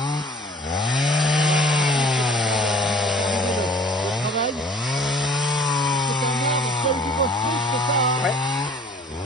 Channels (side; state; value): both; normal; correlation 0.50